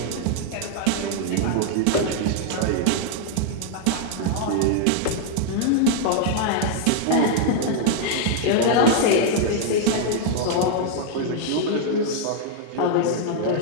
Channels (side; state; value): both; different; correlation 0.00